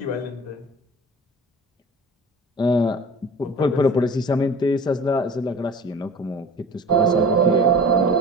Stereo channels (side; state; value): both; normal; correlation 0.40